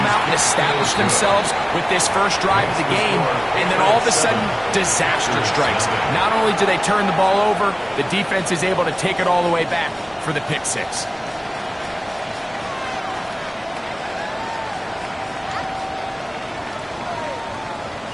out and establish themselves with this first drive of the game, and then all of a sudden, disaster strikes. Not only do they turn the ball over, the defense is able to take it all the way back for the pick six.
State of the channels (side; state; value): both; identical; correlation 1.00